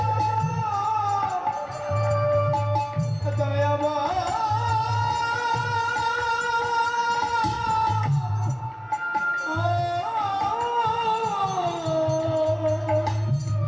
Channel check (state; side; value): identical; both; correlation 1.00